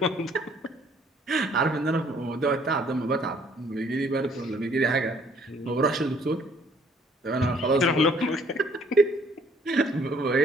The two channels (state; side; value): normal; both; correlation 0.61